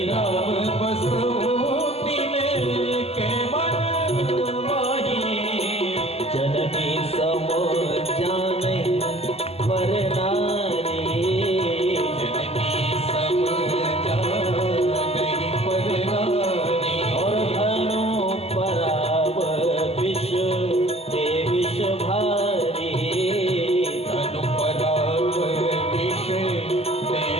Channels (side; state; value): right; late; 0.29 ms